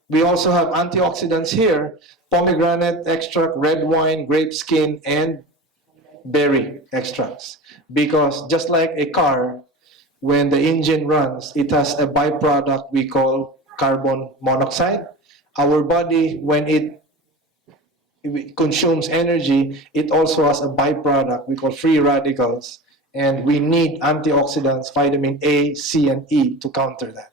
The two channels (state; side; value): normal; both; correlation 0.32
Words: we also have antioxidants here, pomegranate extract, red wine, grape skin, and berry extracts. Because just like a car, when the engine runs, it has a byproduct we call carbon monoxide. Our body, when it consumes energy, it also has a byproduct we call free radicals. And we need antioxidants, vitamin A, C, and E to counter that.